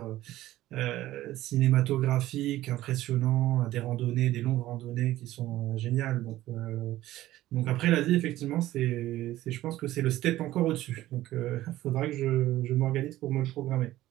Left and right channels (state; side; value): quieter; left; 15.3 dB